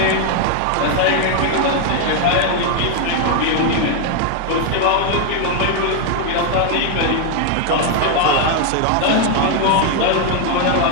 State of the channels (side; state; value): both; different; correlation 0.01